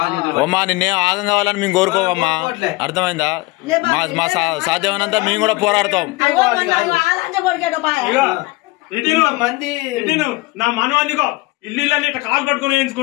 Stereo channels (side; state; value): right; quieter; 22.4 dB